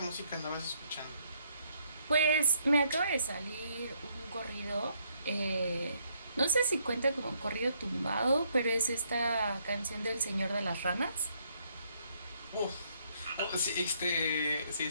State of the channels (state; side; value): inverted; both; correlation -0.71